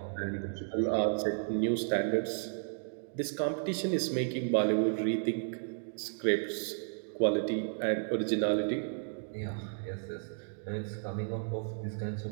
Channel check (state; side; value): silent; left; digital silence